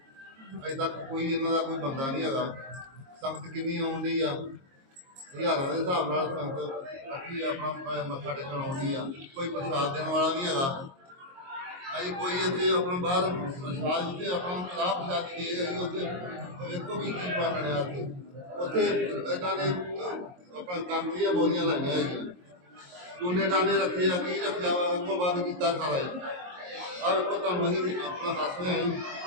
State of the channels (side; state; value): left; late; 22 ms